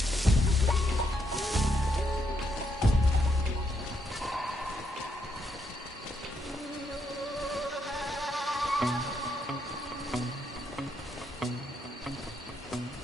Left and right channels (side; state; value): both; normal; correlation 0.77